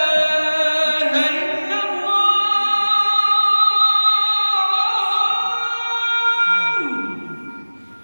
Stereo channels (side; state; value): both; inverted; correlation -1.00